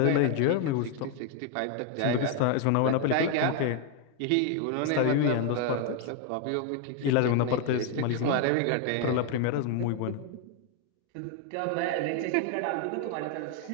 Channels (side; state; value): both; different; correlation 0.01